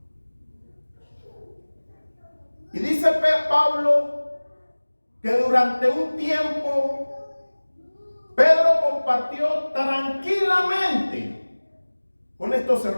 Y dice Pablo que durante un tiempo Pedro compartió tranquilamente con estos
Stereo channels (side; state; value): both; inverted; correlation -1.00